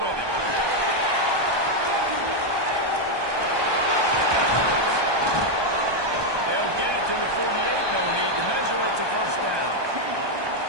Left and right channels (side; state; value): left; late; 1.2 ms